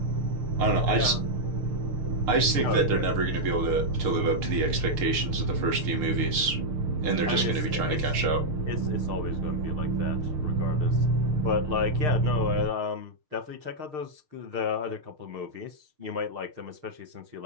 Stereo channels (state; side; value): late; left; 6.6 ms